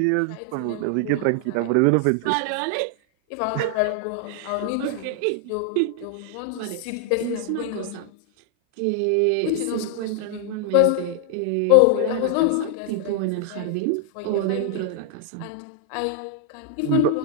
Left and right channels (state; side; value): different; both; correlation 0.00